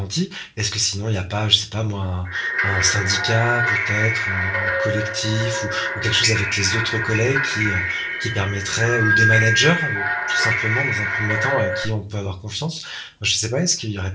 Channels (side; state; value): both; identical; correlation 1.00